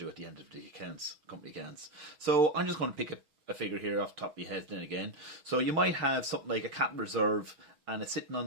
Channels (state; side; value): late; left; 6.3 ms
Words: at the end of the accounts, company accounts. So I'm just going to pick a figure here off the top of your head then again. So you might have something like a capital reserve, and it's sitting